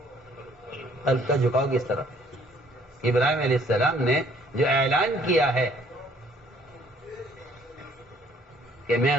قلب کا جھکاؤ کس طرف ہے. ابراہیم علیہ السلام نے جو اعلان کیا ہے کہ میں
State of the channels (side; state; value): both; normal; correlation 0.61